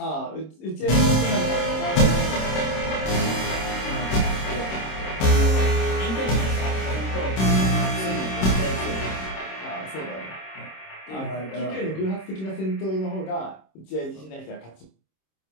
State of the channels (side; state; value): right; late; 26 ms